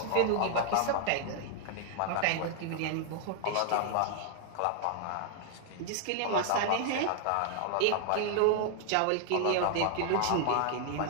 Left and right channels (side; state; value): both; different; correlation -0.01